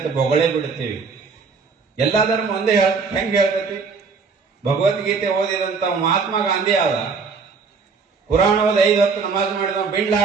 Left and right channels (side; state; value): left; quieter; 5.0 dB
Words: ಬೊಗಳೇ ಬಿಡ್ತೀವಿ. ಎಲ್ಲಾ ಧರ್ಮ ಒಂದೇ ಹೆಂಗ್ ಹೇಳ್ತೈತಿ? ಭಗವದ್ಗೀತೆ ಓದಿದಂತ ಮಹಾತ್ಮ ಗಾಂಧಿ ಆದ, ಪುರಾಣ ಓದಿ 5 ಹೊತ್ತು ನಮಾಜ್ ಮಾಡಿದ ಬಿಲ್